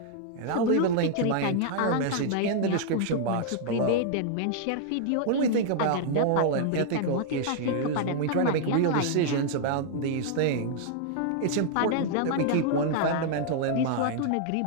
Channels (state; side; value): different; both; correlation -0.01